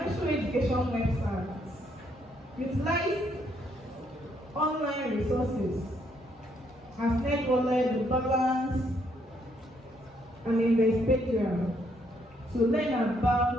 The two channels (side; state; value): both; normal; correlation 0.71